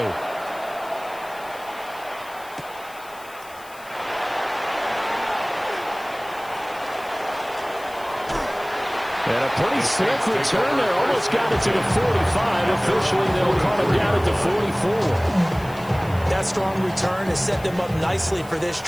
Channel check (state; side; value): noise; left; hiss, 21 dB below the sound